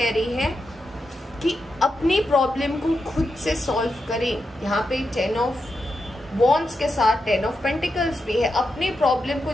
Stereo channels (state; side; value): normal; both; correlation 0.87